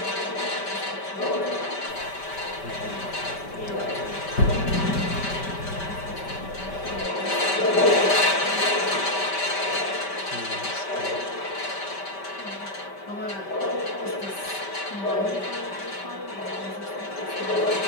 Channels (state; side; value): late; right; 5.1 ms